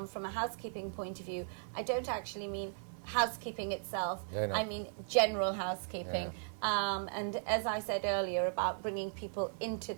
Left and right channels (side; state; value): left; silent; digital silence